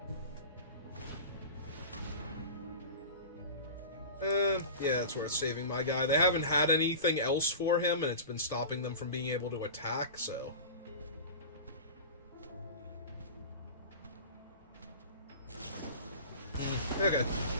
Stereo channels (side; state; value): both; inverted; correlation -0.34